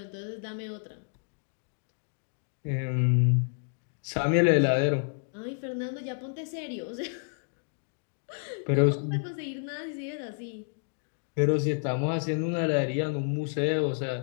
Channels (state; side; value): silent; right; digital silence